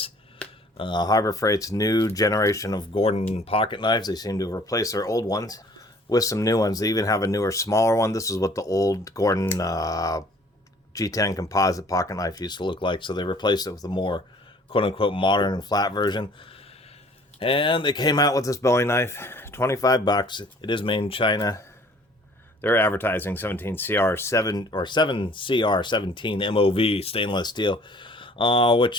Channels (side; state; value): both; normal; correlation 0.54